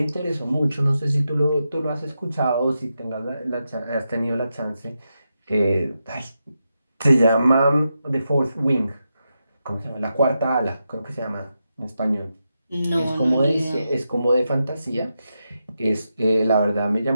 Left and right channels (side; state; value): both; inverted; correlation -0.87